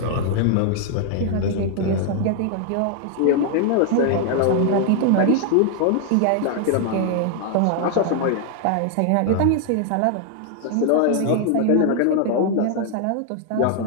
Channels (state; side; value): different; both; correlation 0.00